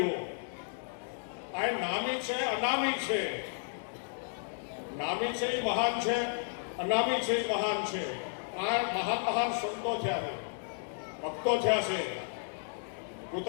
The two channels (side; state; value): right; silent; digital silence